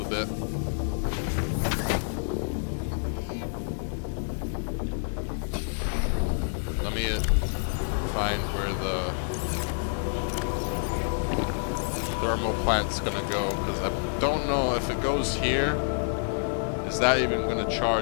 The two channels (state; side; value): silent; right; 59 dB below the other